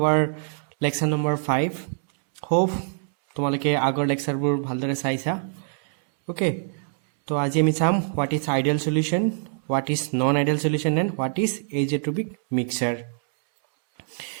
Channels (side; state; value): left; silent; 62 dB below the other